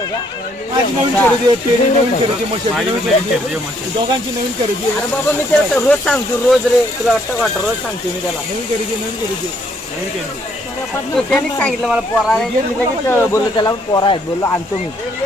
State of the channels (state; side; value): normal; both; correlation 0.68